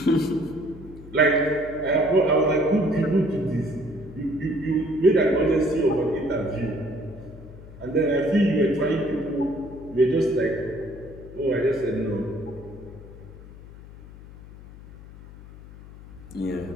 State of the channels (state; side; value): noise; left; hum, 17 dB below the sound